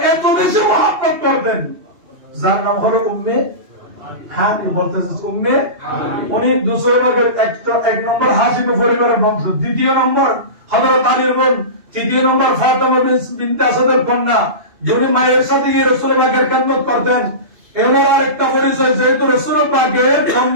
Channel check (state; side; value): late; left; 2.7 ms